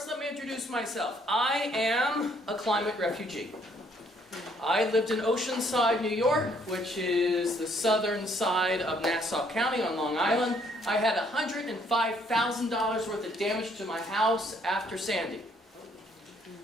let me introduce myself. I am a climate refugee. I lived in Oceanside, New York, which is the southern side of Nassau County on Long Island. I had $105,000 worth of damage to my house after Sandy.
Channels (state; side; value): normal; both; correlation 0.66